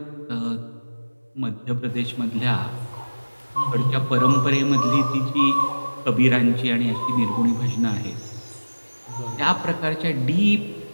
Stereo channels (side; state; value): both; inverted; correlation -1.00